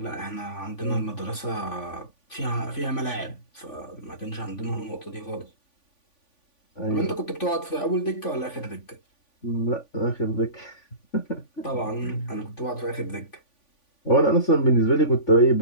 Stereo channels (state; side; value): late; right; 3.5 ms